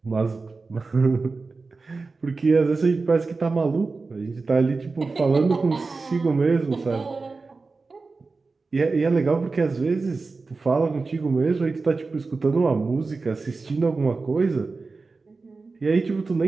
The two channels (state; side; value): quieter; left; 4.0 dB